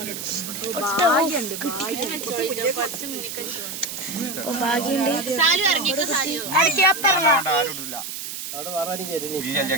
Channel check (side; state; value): right; noise; hiss, 7 dB below the sound